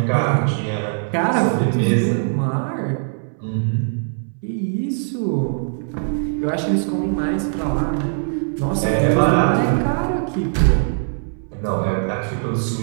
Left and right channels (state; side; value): silent; left; 64 dB below the other